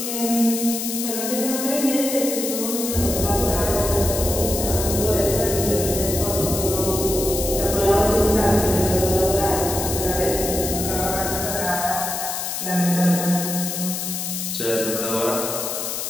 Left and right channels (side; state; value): left; noise; hiss, 4 dB below the sound